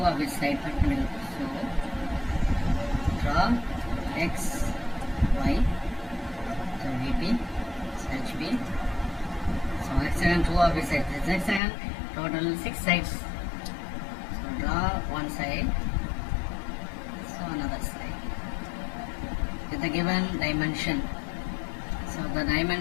of its side perpendicular. So draw X, Y, so VP, HP. So hexagon, two of its sides. This hexagon, total 6 sides. So draw one side, so another side. With the given dimension. So the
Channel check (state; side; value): drops out; right; at 11.6 s